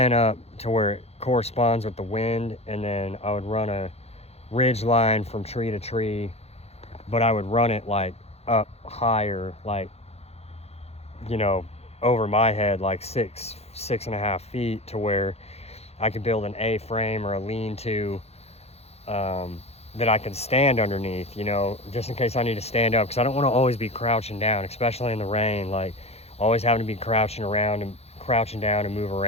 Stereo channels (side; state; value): right; late; 0.30 ms